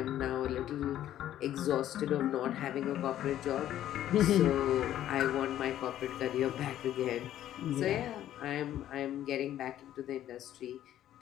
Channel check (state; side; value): quieter; right; 12.1 dB